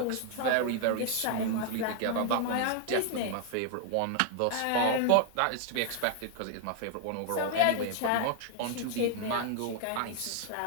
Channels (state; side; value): different; both; correlation 0.00